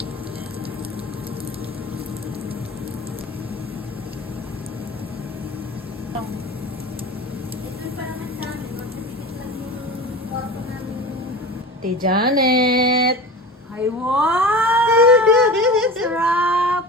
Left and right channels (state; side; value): normal; both; correlation 0.33